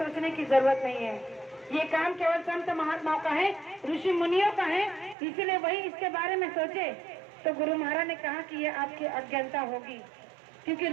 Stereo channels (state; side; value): drops out; left; at 5.2 s